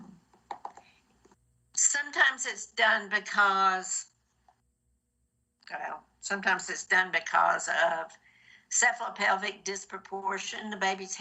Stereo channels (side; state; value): both; identical; correlation 1.00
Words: Sometimes it's done because, sometimes it's done because of cephalopelvic disproportion. The baby's